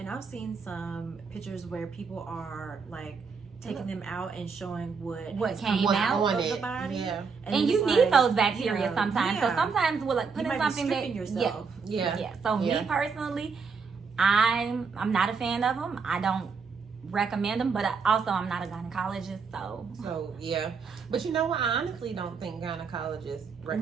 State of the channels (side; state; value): left; quieter; 5.3 dB